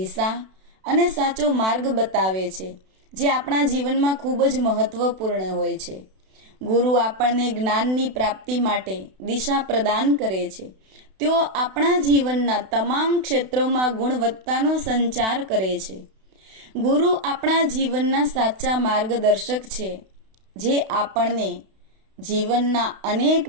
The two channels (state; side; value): late; left; 32 ms